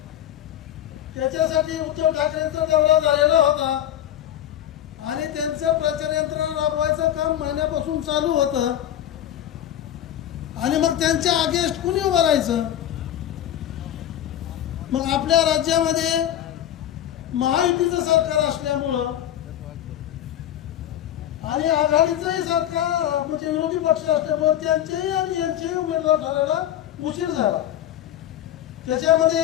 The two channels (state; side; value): quieter; right; 11.5 dB